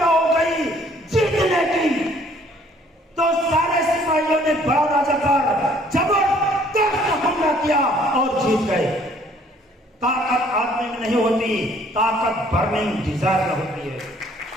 हो गई जीतने की। तो सारे सिपाहियों ने बड़ा राजा पर जबरदस्त हमला किया और जीत गए। ताकत आदमी में नहीं होती, ताकत बर्निंग डिजायर में होती है।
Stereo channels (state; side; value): normal; both; correlation 0.60